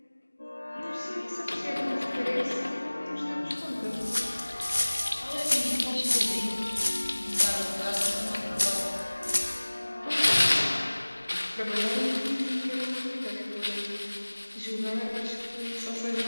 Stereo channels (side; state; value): both; inverted; correlation -1.00